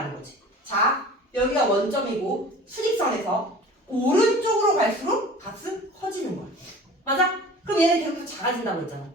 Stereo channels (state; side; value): normal; both; correlation 0.42